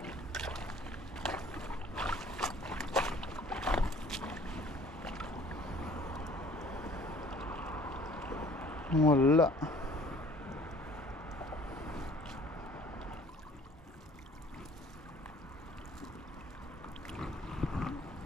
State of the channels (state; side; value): normal; both; correlation 0.53